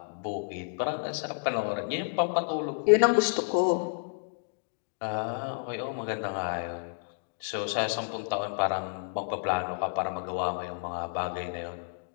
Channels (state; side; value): silent; right; digital silence